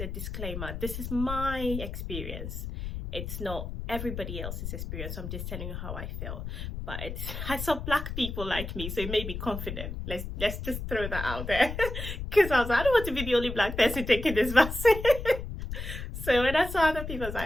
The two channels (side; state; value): left; noise; rumble, 6 dB below the sound